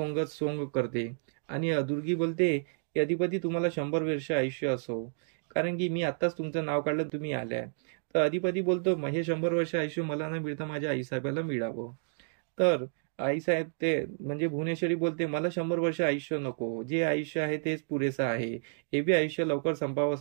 करते आणि दुर्गी बोलते की अधिपती तुम्हाला 100 वर्ष आयुष्य असो, कारण की मी आत्ताच तुमचं नाव काढलं तुम्ही आल्याय. तर अधिपती बोलतो हे 100 वर्ष आयुष्य मला न मिळता माझ्या आईसाहेबाला मिळावं. तर आईसाहेब ते म्हणजे भुवनेश्वरी बोलते मला 100 वर्ष आयुष्य नको, जे आयुष्य आहे तेच पुरेसं आहे, हे बी आयुष्य लवकर संपावं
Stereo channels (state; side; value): silent; left; digital silence